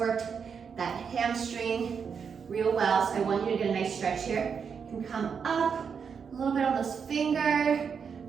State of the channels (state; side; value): quieter; left; 6.4 dB